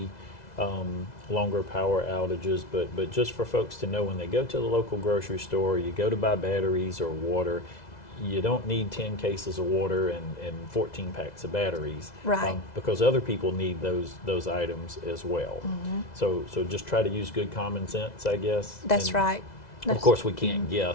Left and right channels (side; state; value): right; late; 2.0 ms